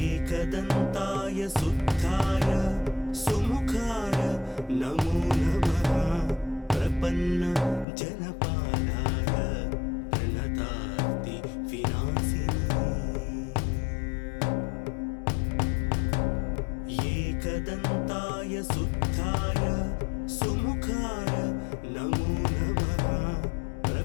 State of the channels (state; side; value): drops out; right; at 7.9 s